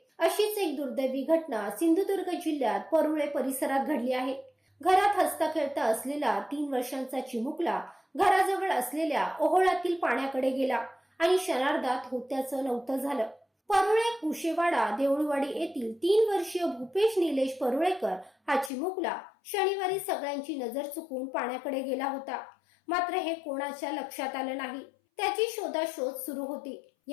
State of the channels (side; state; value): right; drops out; at 18.7 s